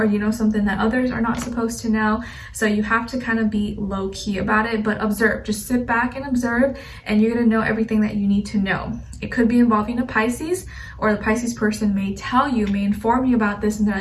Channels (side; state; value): both; identical; correlation 1.00